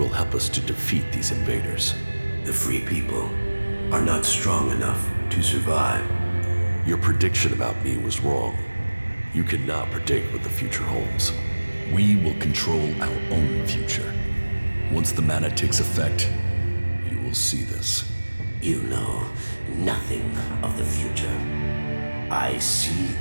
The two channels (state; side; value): inverted; both; correlation -1.00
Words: help us to defeat these invaders. The Free People are not strong enough to survive. Your prediction about me was wrong. You cannot predict what the future holds. We will control our own future. Once the mana takes effect, you will see this. You know nothing of the future. I see